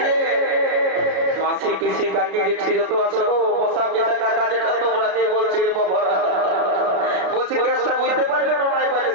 মাসি পিসি কাকি জেঠি যত আছো গো মশা পিসা কাকা যেটা তোমরা যে বলছি রে বাবারা বলছি কেসটা বুঝতে পারলে না নাই পারলে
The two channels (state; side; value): late; left; 33 ms